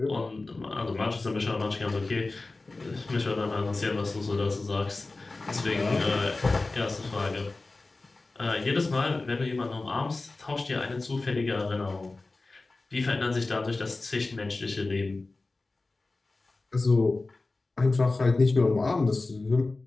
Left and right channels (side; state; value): right; quieter; 3.4 dB